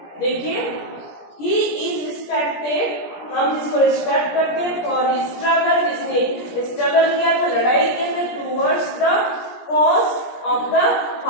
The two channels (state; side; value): late; right; 17 ms